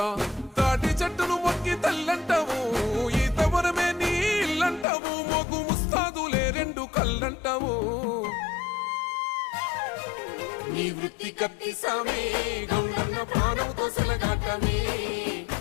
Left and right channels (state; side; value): drops out; right; at 4.9 s